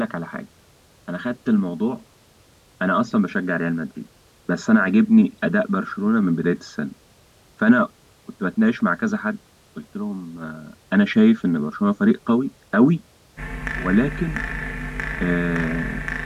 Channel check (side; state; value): both; identical; correlation 1.00